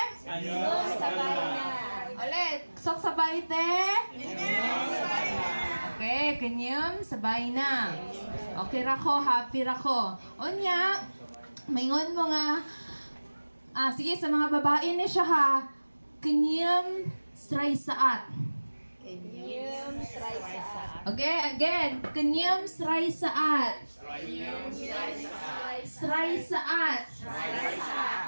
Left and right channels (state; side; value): inverted; both; correlation -1.00